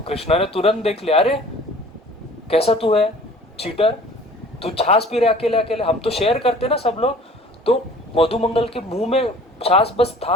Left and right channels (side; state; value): both; normal; correlation 0.48